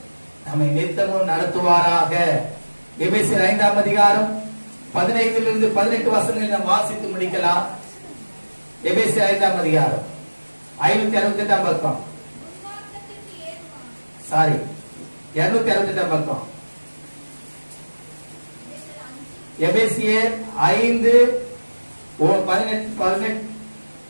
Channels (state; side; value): inverted; both; correlation -1.00